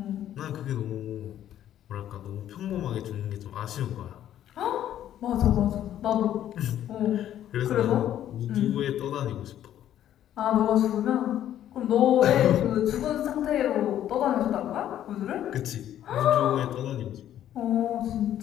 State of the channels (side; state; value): right; quieter; 11.4 dB